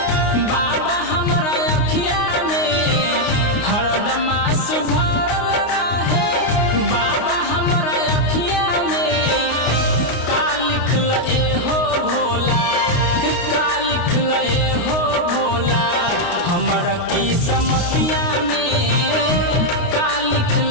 बाबा हमरा अखिया में, हरदम आंसू भरल रहे बाबा हमरा अखिया में। का लिखल एहो भोला, का लिखल एहो भोला हमरा किस्मतिया में, का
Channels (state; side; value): late; right; 29 ms